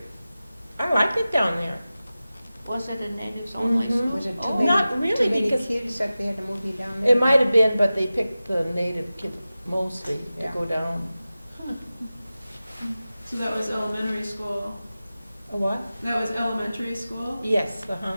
I liked it down there. Was it a natives only Mhm. school? Was it too Oh. many, Not really, too many because- kids that they had to move you down there? It might have been, but they picked the native kids mostly to Yeah. go down. So that was elementary school. A what? That was elementary school? Yes, uh-huh.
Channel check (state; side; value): inverted; both; correlation -0.95